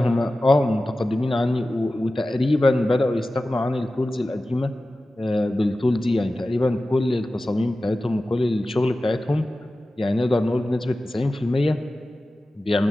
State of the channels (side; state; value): both; normal; correlation 0.95